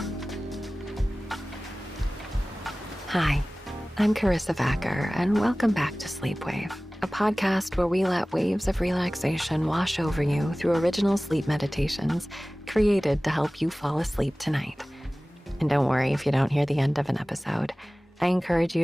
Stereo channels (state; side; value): normal; both; correlation 0.98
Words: I'm Karissa Vacker, and welcome back to Sleepwave, a podcast where we let waves of relaxation wash over you through original sleep meditations created to help you fall asleep tonight. And don't worry if you don't hear the end of an episode. I encourage